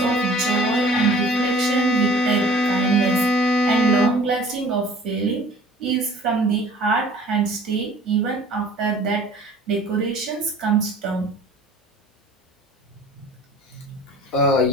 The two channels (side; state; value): both; normal; correlation 0.48